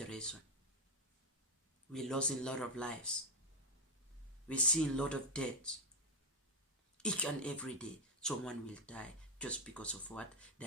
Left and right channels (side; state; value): both; normal; correlation 0.06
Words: We're losing a lot of lives. We're seeing a lot of deaths. Each and every day, someone will die just because of what?